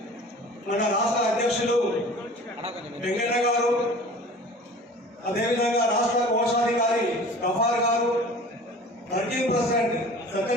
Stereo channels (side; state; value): both; normal; correlation 0.43